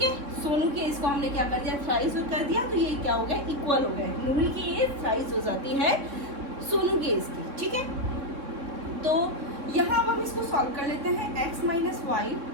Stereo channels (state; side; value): late; left; 3.6 ms